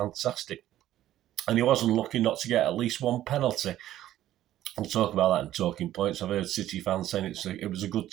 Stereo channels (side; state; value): left; quieter; 13.2 dB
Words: And he wasn't lucky not to get at least one penalty. We'll talk about that in talking points. I've heard City fans saying it was a good